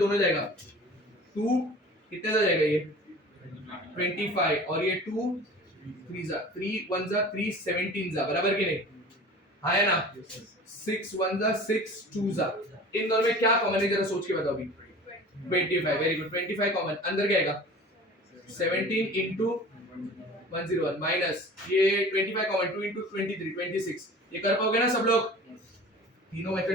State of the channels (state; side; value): normal; both; correlation 0.41